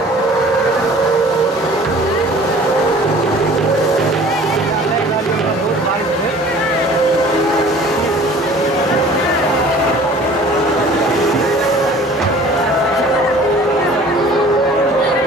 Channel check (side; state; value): both; normal; correlation 0.48